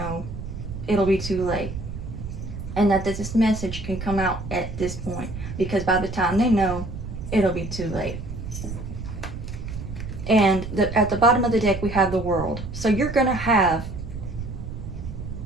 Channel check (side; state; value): right; noise; rumble, 8 dB below the sound